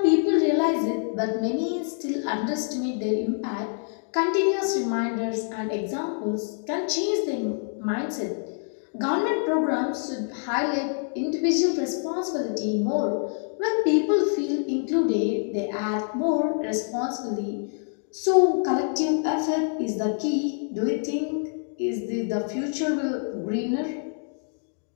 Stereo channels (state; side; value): silent; right; 56 dB below the other